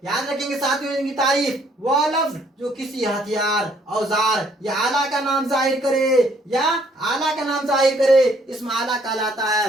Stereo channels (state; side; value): normal; both; correlation 0.65